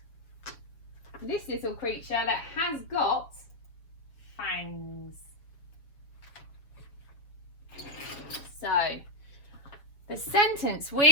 this little creature that has got fangs. So, the sentence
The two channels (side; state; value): right; late; 7.0 ms